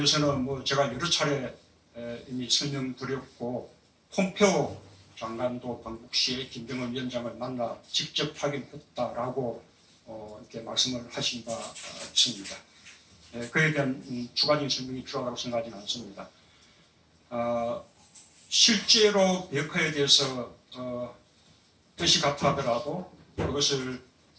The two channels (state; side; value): identical; both; correlation 1.00